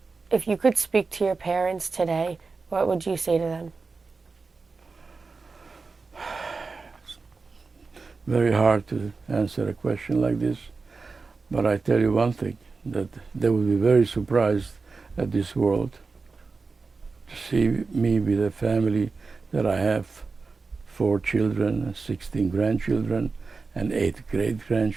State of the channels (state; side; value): quieter; left; 4.3 dB